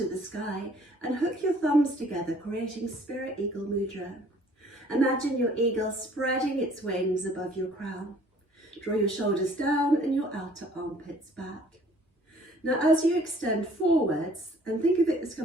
the sky and hook your thumbs together, creating Spirit Eagle Mudra. Imagine your eagle spreading its wings above your crown. Draw your shoulders down and your outer armpits back. Now, as you extend forwards, and think of it as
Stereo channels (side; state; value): both; normal; correlation 0.56